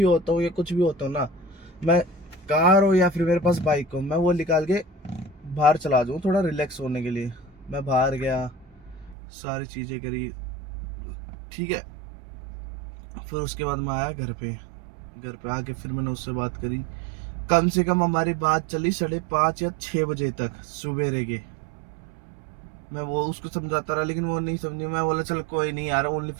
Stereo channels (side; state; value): left; drops out; at 9.2 s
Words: होता हूँ या कुछ भी होता हूँ ना, मैं कार हो या फिर मेरे पास बाइक हो, मैं वो निकाल के बाहर चला जाऊँ थोड़ा रिलैक्स होने के लिए। मैं बाहर गया, सारी चीज़ें करी, ठीक है। फिर उसके बाद मैं आया घर पे। घर पे आके फिर मैंने उससे बात करी। कम से कम हमारी बात चली 5:30 या 6 बजे तक सवेरे के। मैं वो उसको समझाता रहा, लेकिन वो नहीं समझी। मैं बोला चल कोई नहीं यार, ओनली